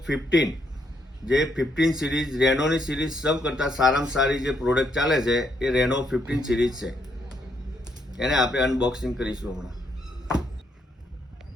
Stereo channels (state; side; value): normal; both; correlation 0.74